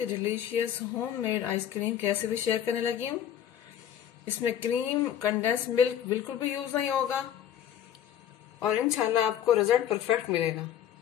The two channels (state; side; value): quieter; right; 10.2 dB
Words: ही डिलीशियस होममेड आइसक्रीम की रेसिपी शेयर करने लगी हूँ। इसमें क्रीम, कंडेंस मिल्क बिल्कुल भी यूज नहीं होगा और इंशाल्लाह आपको रिजल्ट परफेक्ट मिलेगा।